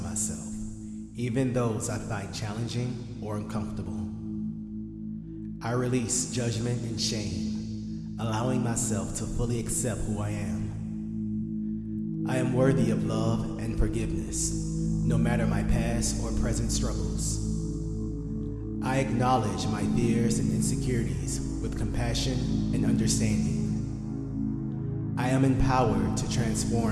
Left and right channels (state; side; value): identical; both; correlation 1.00